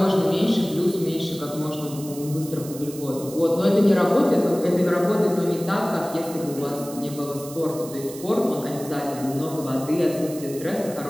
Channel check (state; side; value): noise; right; hiss, 15 dB below the sound